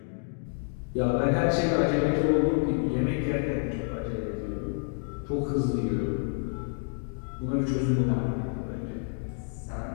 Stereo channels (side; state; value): right; silent; 59 dB below the other